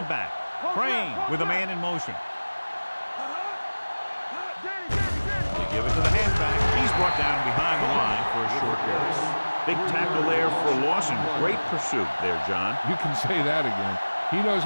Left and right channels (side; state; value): both; inverted; correlation -1.00